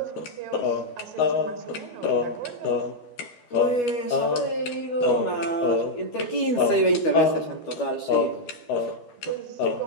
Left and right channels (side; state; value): right; late; 12 ms